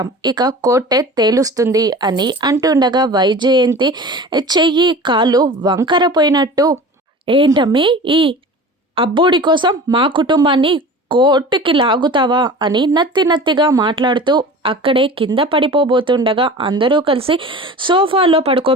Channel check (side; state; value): both; normal; correlation 0.37